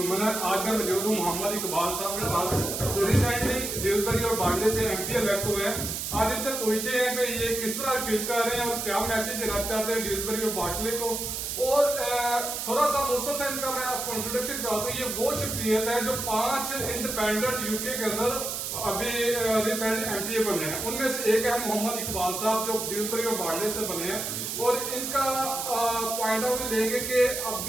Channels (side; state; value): right; noise; hiss, 4 dB below the sound